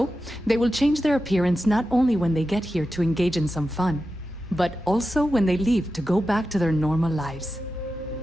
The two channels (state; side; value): normal; both; correlation 0.91